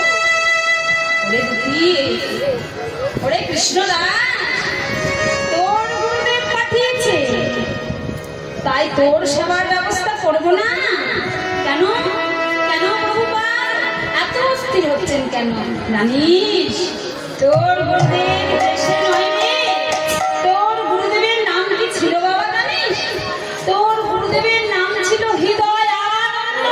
ওরে দুঃখী ওরে কৃষ্ণদাস তোর গুরুদেব পাঠিয়েছে তাই তোর সেবার ব্যবস্থা করবো না কেন কেন প্রভুপাদ এত অস্থির হচ্ছেন কেন জানিস তোর গুরুদেব দেশে নয় রে তোর গুরুদেবের নাম কি ছিল বাবা জানিস তোর গুরুদেবের নাম ছিল হৃদয় আনন্দ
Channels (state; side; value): identical; both; correlation 1.00